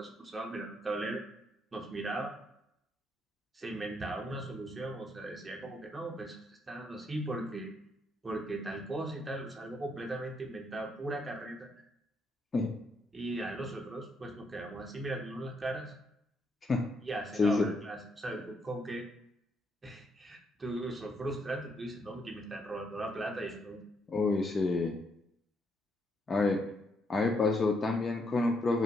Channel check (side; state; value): both; normal; correlation 0.75